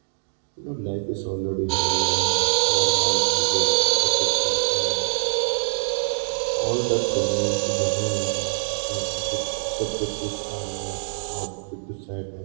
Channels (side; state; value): left; silent; digital silence